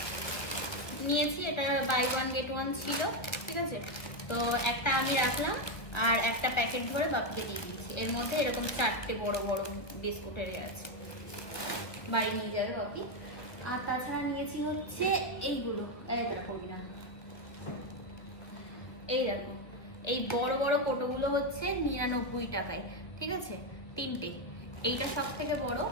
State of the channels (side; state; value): right; late; 1.5 ms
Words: নিয়েছি, এটা বাই 1 get 1 ছিল, ঠিক আছে। তো একটা আমি রাখলাম, আর একটা প্যাকেট ধরে বাপিকে দিয়ে দিয়েছি। এর মধ্যে এরকম 4টে বড় বড় বিস্কুটের আছে, বাড়ি নিয়ে যাবে বাপি। আর তাছাড়া নিয়েছি হচ্ছে এইগুলো, এই দেখো না, এই দেখো, এই বড় বড় কোটোগুলো হচ্ছে 99 টাকায়, ঠিক আছে, 3টে। এইটা সব থেকে বড়,